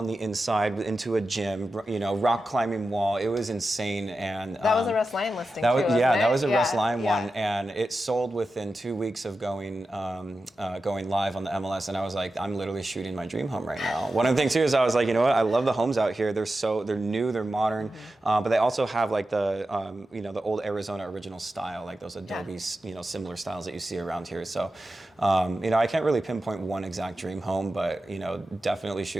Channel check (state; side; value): normal; both; correlation 0.92